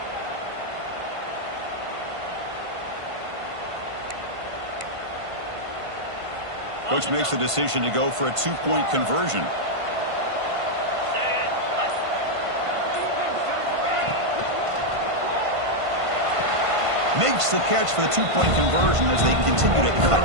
Coach makes the decision to go for a 2-point conversion. Makes the catch for the 2-point conversion as they continue to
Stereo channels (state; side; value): late; left; 1.5 ms